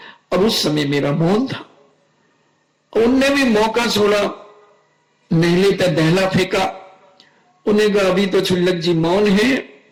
अब उस समय मेरा मौन था। उनने भी मौका छोड़ा, नेहले पे दहला फेंका। उन्हें कहा अभी तो छुल्लक जी मौन है,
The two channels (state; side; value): identical; both; correlation 1.00